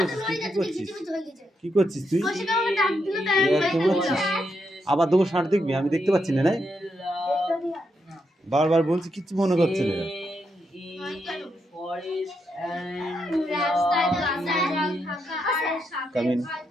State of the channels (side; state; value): both; normal; correlation 0.81